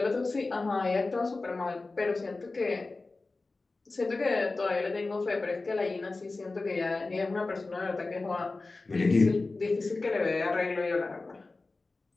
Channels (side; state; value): right; quieter; 3.5 dB